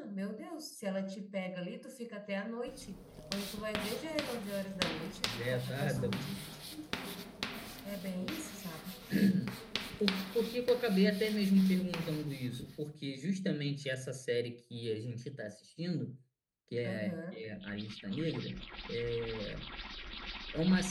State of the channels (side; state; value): both; identical; correlation 1.00